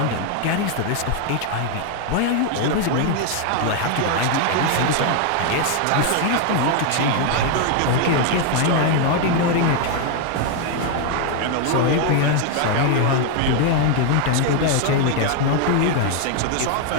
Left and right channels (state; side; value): different; both; correlation 0.00